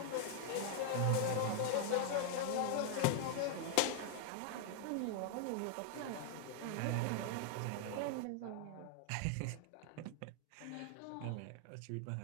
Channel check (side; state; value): both; different; correlation 0.00